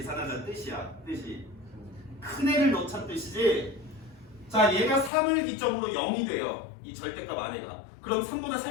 뜻이야. 뜻이. 큰 애를 넣자는 뜻이지? 자, 얘가 3을 기점으로 0이 돼요. 이 절대값 안에가. 그럼 3보다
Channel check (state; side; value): drops out; right; at 5.1 s